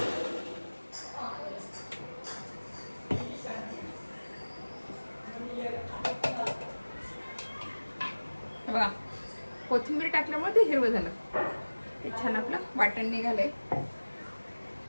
बघा कोथिंबीर टाकल्यामुळे ते हिरवं झालं, ते छान आपलं वाटण निघालंय.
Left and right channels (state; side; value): inverted; both; correlation -1.00